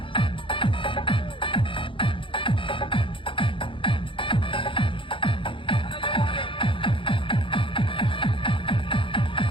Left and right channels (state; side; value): late; right; 0.25 ms